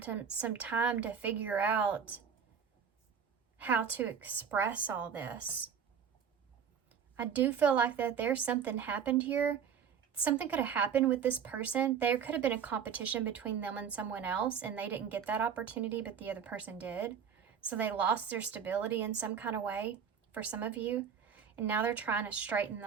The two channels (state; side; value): quieter; left; 7.3 dB